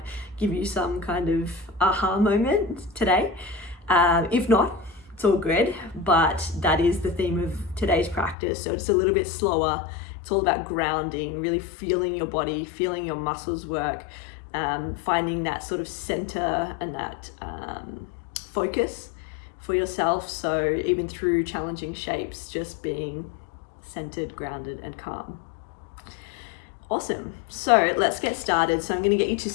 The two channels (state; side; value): drops out; right; at 8.3 s